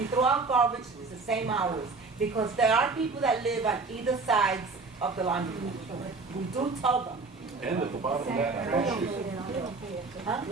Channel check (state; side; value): quieter; left; 4.1 dB